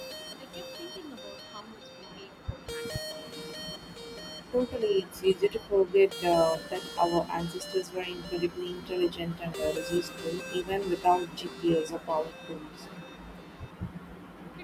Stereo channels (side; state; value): both; identical; correlation 1.00